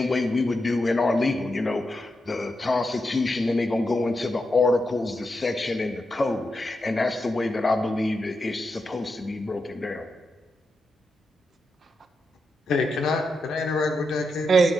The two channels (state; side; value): normal; both; correlation 0.86